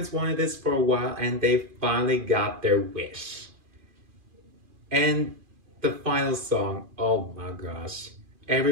wanted this for a while, and they finally got their wish. And the final song, oh my gosh.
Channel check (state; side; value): late; left; 2.4 ms